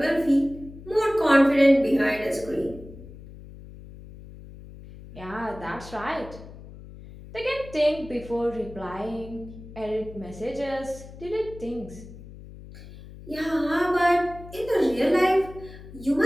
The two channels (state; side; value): noise; left; hum, 16 dB below the sound